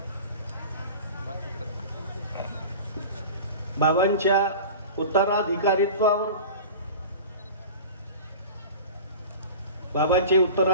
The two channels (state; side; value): inverted; both; correlation -0.36